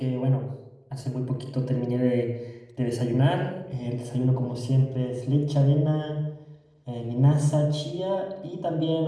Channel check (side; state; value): both; identical; correlation 1.00